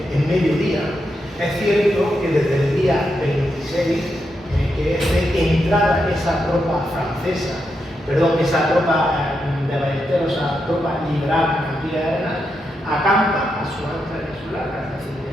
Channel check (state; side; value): normal; both; correlation 0.84